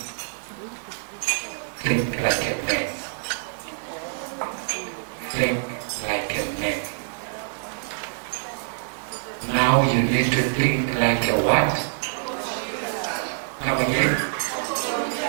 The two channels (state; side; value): silent; left; digital silence